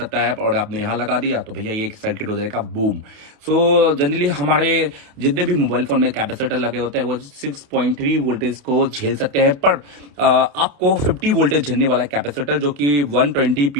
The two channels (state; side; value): late; left; 28 ms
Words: है और आपने यहाँ लगा दिया तो भैया ये सर्किट हो जाएगा बूम। सो जनरली हमारे जितने भी मोबाइल फोन में कैपेसिटर लगे होते हैं वो 6.3 वोल्टेज को झेल सकते हैं, पर आपको 50 वोल्टेज झेलने वाला कैपेसिटर जो कि 120